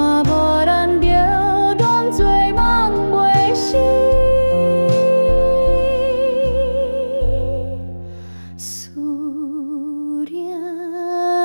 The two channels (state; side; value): inverted; both; correlation -1.00